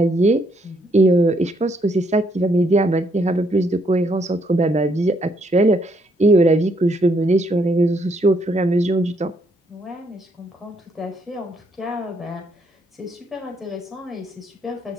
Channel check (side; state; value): both; normal; correlation 0.72